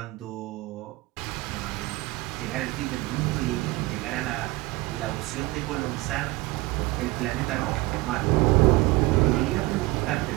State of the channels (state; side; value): quieter; left; 20.8 dB